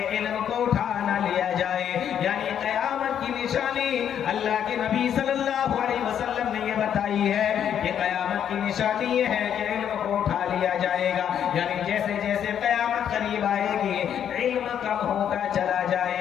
علم کو اٹھا نہ لیا جائے۔ یعنی قیامت کی نشانی اللہ کے نبی صلی اللہ علیہ وسلم نے یہ بتائی ہے کہ قیامت کی نشانی یہ ہے کہ علم کو اٹھا لیا جائے گا۔ یعنی جیسے جیسے قیامت قریب آئے گی علم کم ہوتا چلا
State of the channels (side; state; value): right; quieter; 9.2 dB